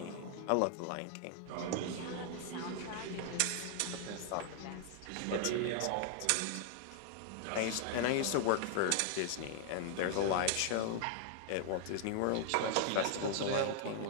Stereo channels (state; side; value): different; both; correlation 0.00